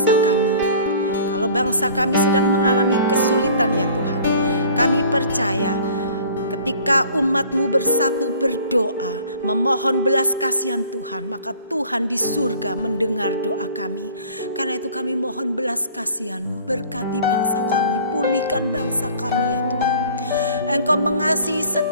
kami. Kalau bangsa kami sedang mengalami kesulitan ya Tuhan, kami percaya ketika umat-Mu bersatu berdoa, memohon belas kasihan Tuhan, maka Tuhan di surga mendengar doa kami. Karena itu kami mohon belas kasihan-Mu, berkati bangsa kami, pulihkan bangsa kami ya Tuhan. Engkau mengasihi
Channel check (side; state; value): both; inverted; correlation -0.49